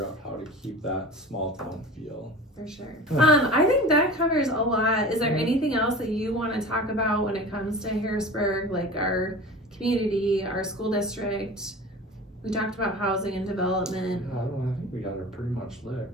out how to keep that small town feel. For sure. I think that covers a lot. Is there anything else that you want to talk about when it comes to Harrisburg, like our community, our school district? We talked about housing and development. I think we got it pretty much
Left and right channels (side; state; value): both; normal; correlation 0.37